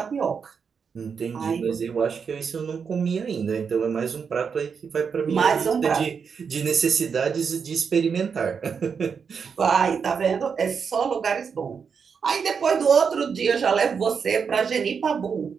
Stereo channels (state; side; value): quieter; left; 6.2 dB